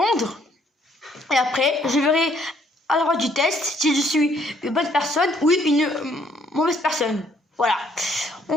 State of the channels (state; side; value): normal; both; correlation 0.66